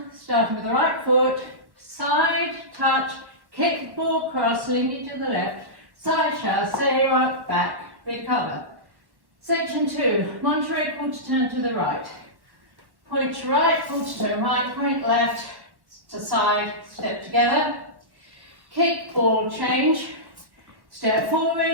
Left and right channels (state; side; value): late; left; 1.1 ms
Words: starting with the right foot, side, touch, kick, ball, cross, linking to the left, side chassé, rock, back, recover. Section 2, Monterey quarter turn to the right. Point to right, quarter turn right, point left, to side, step together. Kick, ball, change. Step